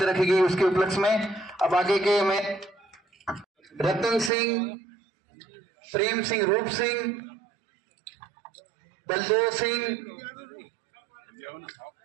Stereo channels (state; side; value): drops out; left; at 4.3 s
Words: रखी गई उसके उपलक्ष्य में। अब आगे के में रतन सिंह, प्रेम सिंह, रूप सिंह, बलदेव सिंह,